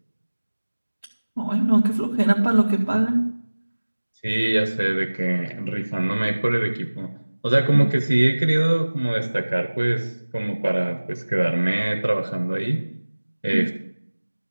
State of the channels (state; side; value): inverted; both; correlation -1.00